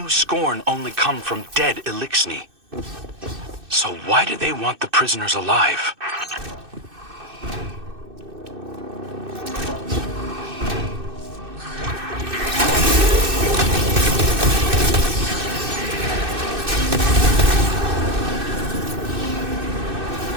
Scorn only come from dead Elixni. So why do they want the prisoners alive?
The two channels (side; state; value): left; late; 2.6 ms